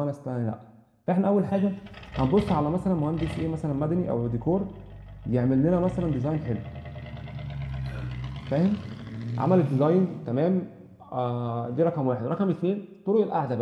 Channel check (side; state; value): both; identical; correlation 1.00